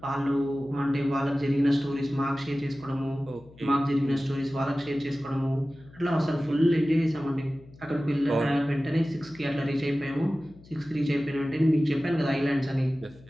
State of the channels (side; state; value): left; noise; hum, 23 dB below the sound